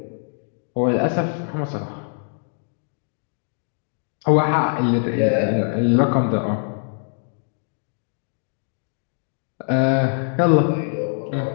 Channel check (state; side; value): silent; right; digital silence